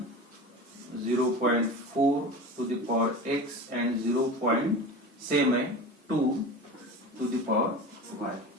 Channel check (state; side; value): normal; both; correlation 0.31